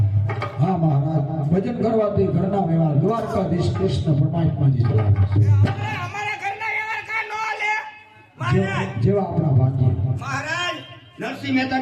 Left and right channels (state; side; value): identical; both; correlation 1.00